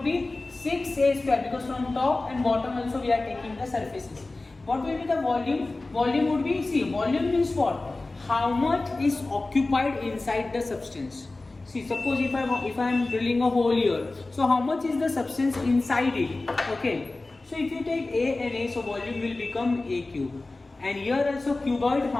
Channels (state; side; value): quieter; right; 3.2 dB